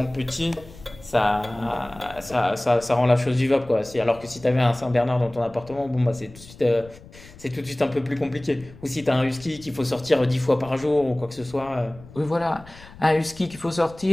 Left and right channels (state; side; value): noise; left; rumble, 20 dB below the sound